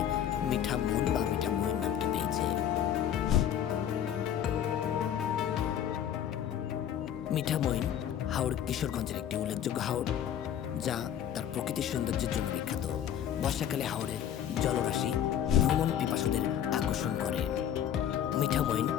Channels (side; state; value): right; quieter; 9.9 dB